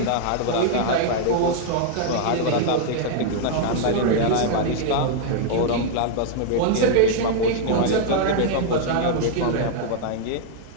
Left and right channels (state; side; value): different; both; correlation -0.01